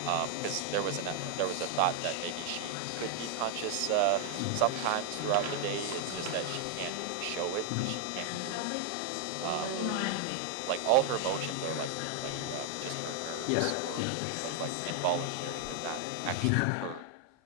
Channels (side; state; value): both; different; correlation 0.00